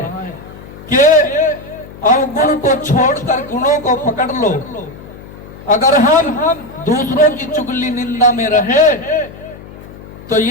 कि अवगुण को छोड़कर गुणों को पकड़ लो। अगर हम दूसरों की चुगली निंदा में रहे तो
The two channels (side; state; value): left; noise; hum, 17 dB below the sound